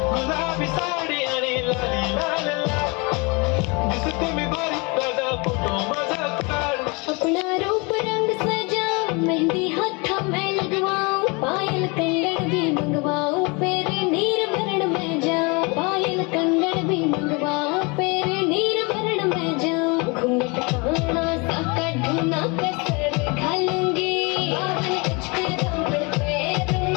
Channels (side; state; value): right; quieter; 29.0 dB